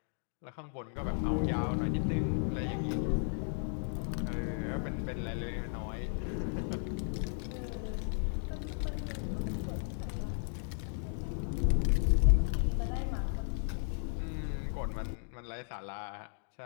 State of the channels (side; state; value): right; silent; 55 dB below the other